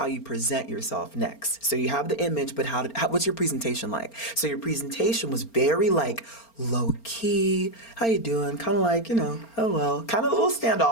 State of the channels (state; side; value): late; right; 4.3 ms